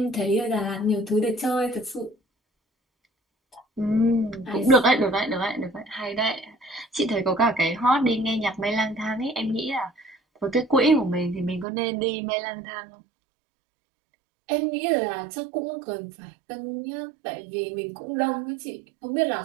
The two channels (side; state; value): left; drops out; at 11.7 s